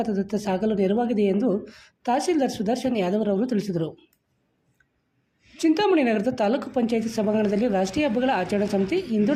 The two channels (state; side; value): identical; both; correlation 1.00